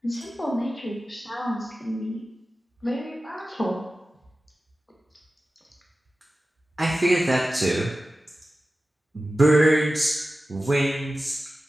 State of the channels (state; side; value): normal; both; correlation 0.95